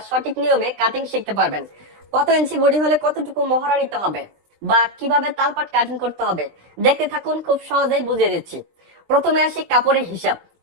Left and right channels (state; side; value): late; left; 20 ms